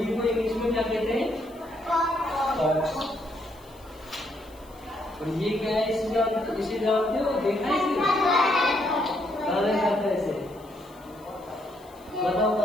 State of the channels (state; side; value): noise; left; hiss, 27 dB below the sound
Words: को इंग्लिश में क्या कहते हैं? फॉक्स। और ये क्या है? इसे जानते हो? देखा है इसे? कहाँ देखा था इसे? बताओ